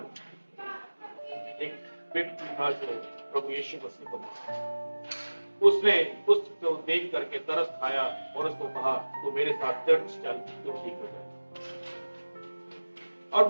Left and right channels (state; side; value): inverted; both; correlation -1.00